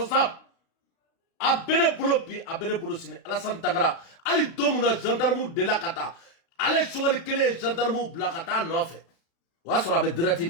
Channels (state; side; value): late; right; 36 ms